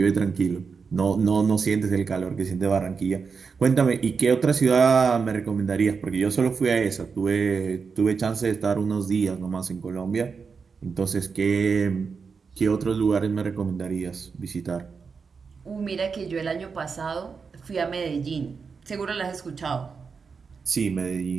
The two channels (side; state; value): left; quieter; 5.4 dB